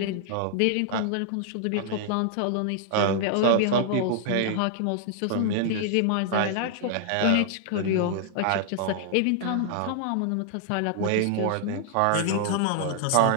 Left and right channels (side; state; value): both; different; correlation -0.01